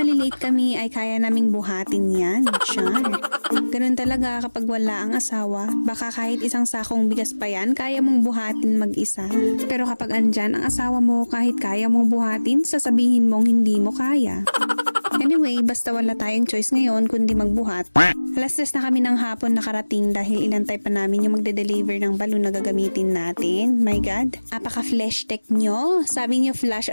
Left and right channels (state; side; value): inverted; both; correlation -1.00